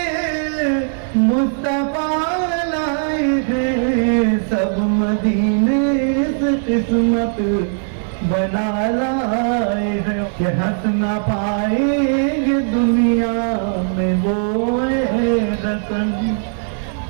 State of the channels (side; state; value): left; silent; 67 dB below the other